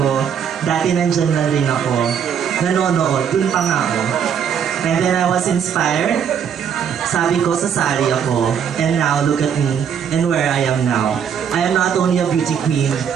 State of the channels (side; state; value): left; quieter; 7.9 dB